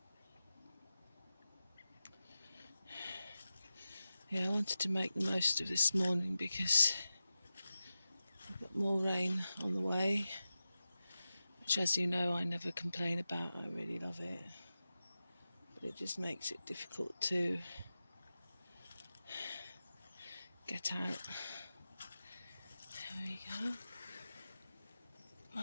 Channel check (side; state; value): both; inverted; correlation -0.93